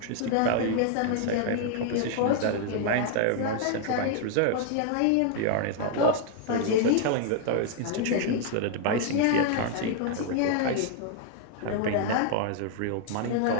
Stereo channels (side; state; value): both; different; correlation 0.00